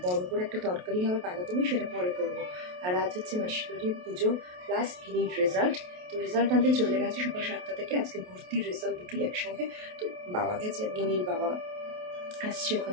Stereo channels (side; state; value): left; late; 28 ms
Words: বড় করে একটা তরকারি হবে বাঁধাকপি, সেটা পরে করবো। আর আজ হচ্ছে মাসির বাড়ির পুজো প্লাস গিনির রেজাল্ট। তো রেজাল্ট আনতে চলে গেছে সকাল 7টা থেকে। আজকে ভর্তির রেজাল্ট দুটোই একসঙ্গে। তো বাবা গেছে, গিনির বাবা আসছে